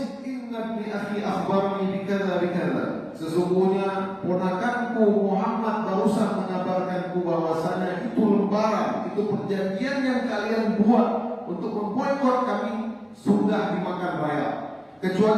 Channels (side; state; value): both; identical; correlation 1.00